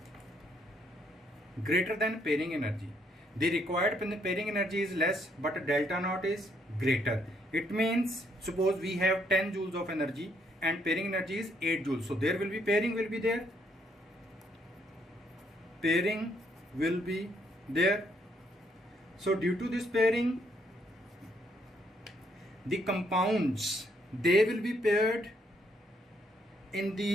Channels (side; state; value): both; normal; correlation 0.71